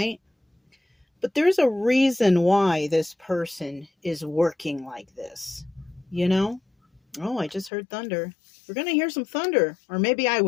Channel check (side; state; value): right; drops out; at 7.7 s